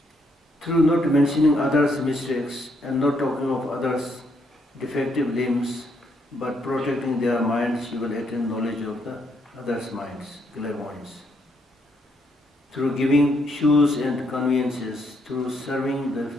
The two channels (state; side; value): normal; both; correlation 0.74